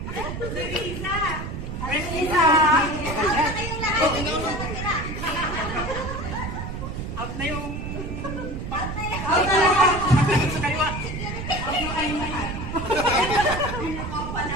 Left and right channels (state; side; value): noise; right; rumble, 6 dB below the sound